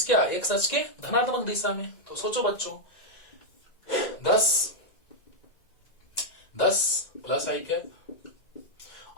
क्या, एक सच के धनात्मक दिशा में। तो सोचो बच्चों, 10 प्लस आई कैप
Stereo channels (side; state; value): right; late; 1.9 ms